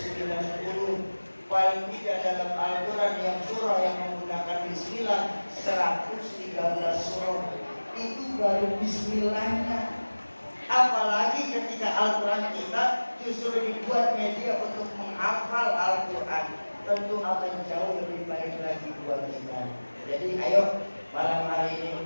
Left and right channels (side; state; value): both; inverted; correlation -1.00